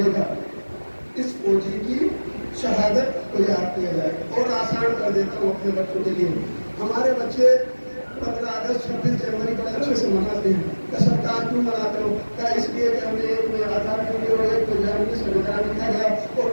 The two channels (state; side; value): inverted; both; correlation -1.00